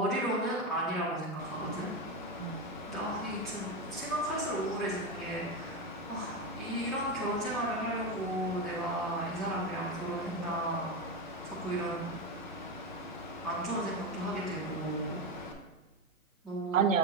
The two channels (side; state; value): both; normal; correlation 0.14